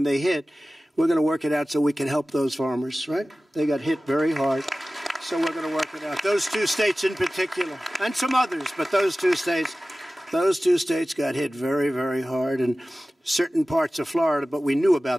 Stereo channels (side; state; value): both; normal; correlation 0.96